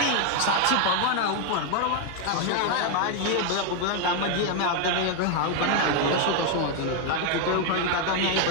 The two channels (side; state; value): both; different; correlation 0.01